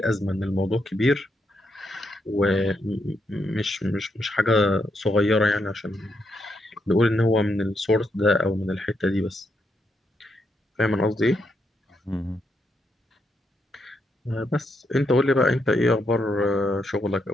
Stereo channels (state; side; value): normal; both; correlation 0.79